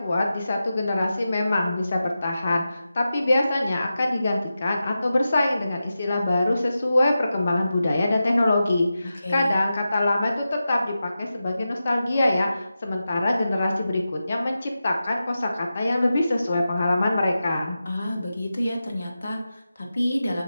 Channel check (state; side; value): inverted; both; correlation -0.92